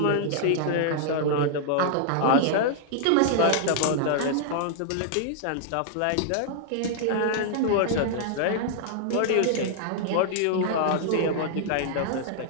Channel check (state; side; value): different; both; correlation -0.01